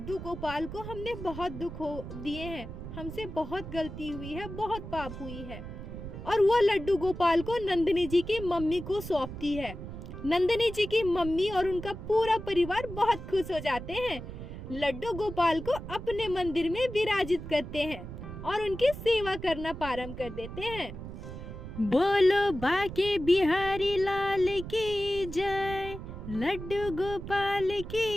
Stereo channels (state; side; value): noise; right; rumble, 10 dB below the sound